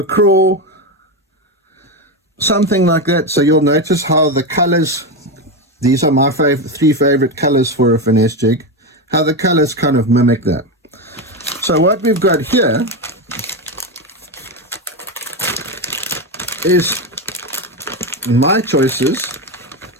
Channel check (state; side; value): normal; both; correlation 0.13